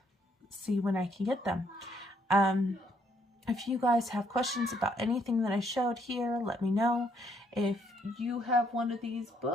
see when I can get them. If you guys have questions about anything that I showed here, let me know. If you have one of these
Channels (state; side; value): normal; both; correlation 0.70